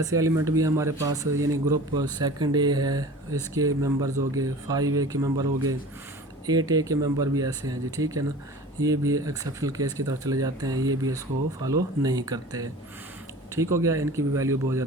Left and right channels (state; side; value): normal; both; correlation 0.40